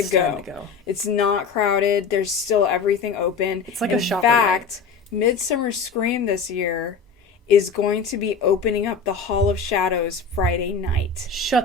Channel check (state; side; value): quieter; right; 5.2 dB